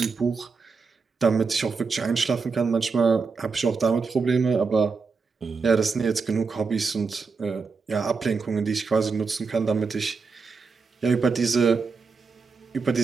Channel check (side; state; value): left; quieter; 4.8 dB